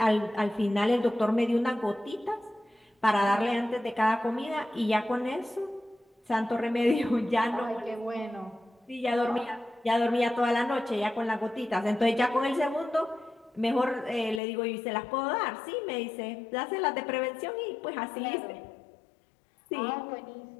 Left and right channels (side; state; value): right; drops out; at 14.4 s